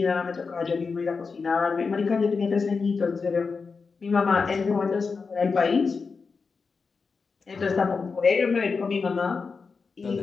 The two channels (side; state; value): right; quieter; 4.9 dB